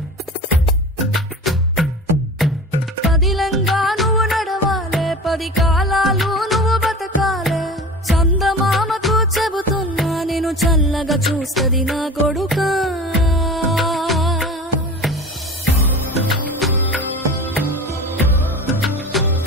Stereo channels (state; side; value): normal; both; correlation 0.35